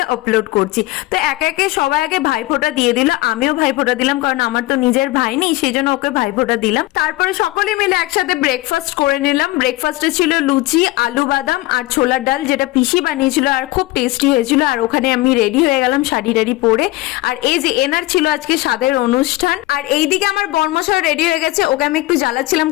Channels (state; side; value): quieter; right; 19.2 dB